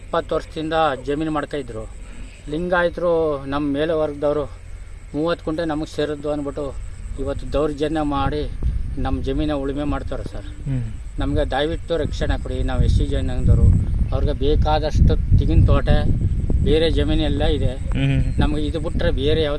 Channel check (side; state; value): both; identical; correlation 1.00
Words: ವರ್ಷದಿಂದ ಜಮೀನು ಮಾಡ್ತಾಯಿದ್ರು. ಲಿಂಗಾಯತರು ನಮ್ಮ ಮೇಲೆ ವರ್ಗದವರು 30 ಕುಂಟೆ ನಮಗೆ ಸೇರಿದ್ದು ಅಂದ್ಬಿಟ್ಟು ಇವತ್ತು ದೌರ್ಜನ್ಯ ಮಾಡಿ ನಮ್ಮ ಜಮೀನ ಉಳುಮೆ ಮಾಡ್ತಾರೆ ಸರ್. ನಮಗೆ ದಯವಿಟ್ಟು ರಕ್ಷಣೆ ಕೊಡಿ. ನಾವು SC ಜನಾಂಗದವರು, ಅವ್ರಿಗೆ ಬೇಕಾದಷ್ಟು ತೆಂಗಿನ ತೋಟ, ಬೇರೆ ಜಮೀನೆಲ್ಲ ಇದೆ. ನಮಗೆ ಇದು ಬಿಟ್ಟರೆ ಬೇರೆ